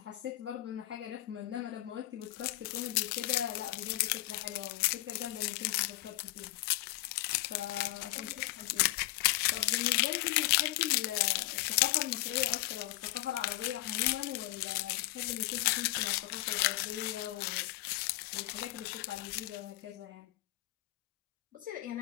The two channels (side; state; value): right; quieter; 17.9 dB